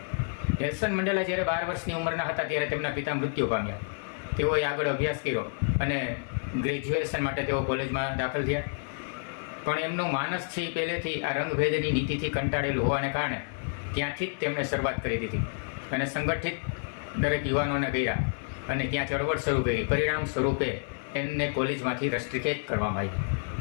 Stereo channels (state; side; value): silent; right; 58 dB below the other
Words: નેલ્સન મંડેલા જ્યારે 12 વર્ષની ઉંમરના હતા ત્યારે તેમના પિતા મૃત્યુ પામ્યા. તેઓએ આગળ અભ્યાસ કર્યો અને ગ્રેજ્યુએશન માટે તેઓ કોલેજમાં દાખલ થયા. પણ એમનું માનસ છે એ પહેલેથી આ રંગભેદની નીતિથી કંટાળેલું હોવાને કારણે ત્યાંથી જ તેમણે શરૂઆત કરી દીધી અને સંગઠિત દરેક યુવાનોને કર્યા અને ત્યાં ચળવળ શરૂ કરી. પરિણામ સ્વરૂપે એમને કોલેજમાંથી રસ્ટ્રિકેટ કરવામાં આવ્યું.